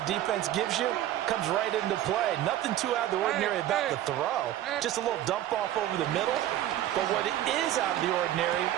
defense gives you, comes right into play. Nothing too out of the ordinary about the throw. Just a little dump off over the middle. But what is out of the ordinary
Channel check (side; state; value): left; quieter; 12.9 dB